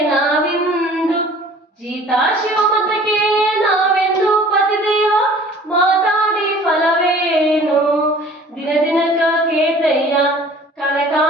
ನಾವಿಂದು, ಜೀತ ಶಿವಮತಕ್ಕೆ ನಾವೆಂದು. ಪತಿದೇವ ಮಾತಾಡಿ ಫಲವೇನು, ದಿನ ದಿನಕ ಕೇತಯ್ಯ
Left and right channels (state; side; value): normal; both; correlation 0.49